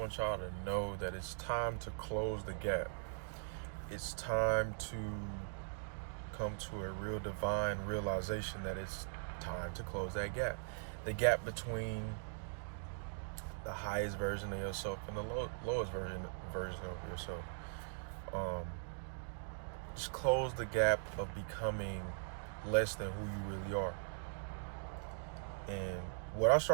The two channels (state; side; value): silent; left; digital silence